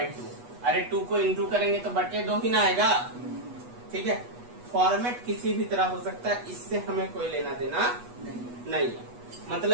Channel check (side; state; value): left; late; 8.2 ms